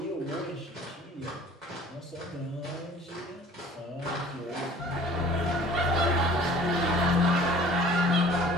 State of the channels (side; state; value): both; normal; correlation 0.50